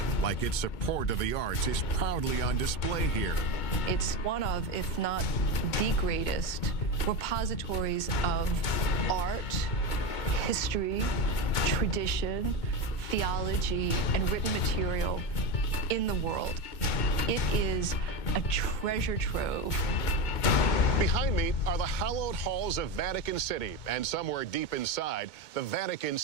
like its support of the arts, is proudly on display here. It's one of, if not the greatest, repositories of art, history, tradition, theology, and written material in the world. It is a treasure trove. Behind me are the hallowed halls of Vatican City, and somewhere deep inside, the Vatican's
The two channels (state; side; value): late; right; 2.2 ms